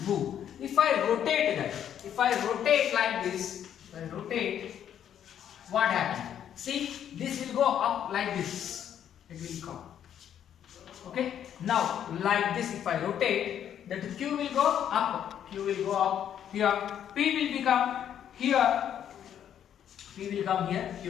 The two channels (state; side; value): quieter; right; 9.7 dB